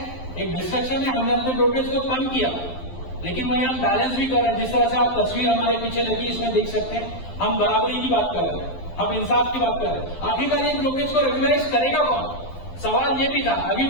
एक डिस्ट्रक्शन है, हमने अपने ब्रोकरेज को कम किया, लेकिन वही हम बैलेंस भी कर रहे हैं। जिस तरह से आप तस्वीर हमारे पीछे लगी, इसमें देख सकते हैं, हम बराबरी की बात कर रहे हैं, हम इंसाफ की बात कर रहे हैं। आखिरकार ये ब्रोकरेज को रेगुलराइज करेगा कौन? सवाल ये भी था। अभी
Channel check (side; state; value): right; late; 12 ms